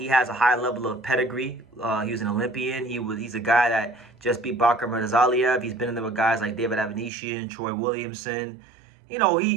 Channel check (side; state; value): left; drops out; at 7.1 s